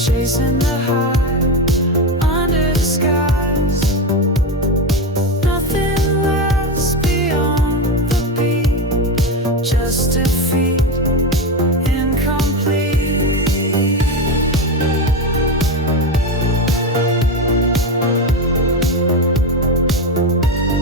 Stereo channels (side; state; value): both; normal; correlation 0.16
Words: the high under the skies. Nothing lasts beyond the beat, just defeat, incomplete.